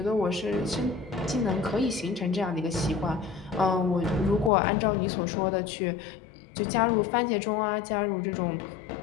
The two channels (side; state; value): right; drops out; at 4.5 s